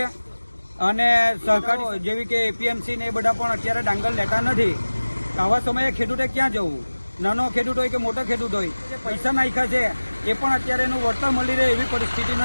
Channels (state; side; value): inverted; both; correlation -1.00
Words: અને સરકારી જેવી કે એપીએમસી ને એ બધા પણ અત્યારે ડાંગર લેતા નથી। આવા સમયે ખેડૂતે ક્યાં જવું? નાનો ખેડૂત હોય કે મોટો ખેડૂત હોય, જે પૈસા નાખ્યા છે એ પણ અત્યારે એનું વળતર મળી રહે એવી પરિસ્થિતિ